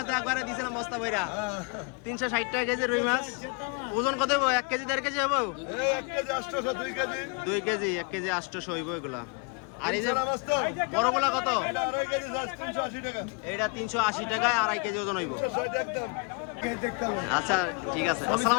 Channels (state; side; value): quieter; right; 33.0 dB